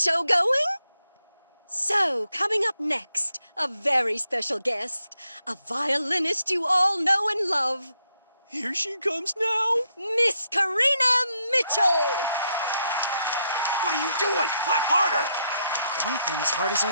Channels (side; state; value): both; inverted; correlation -0.78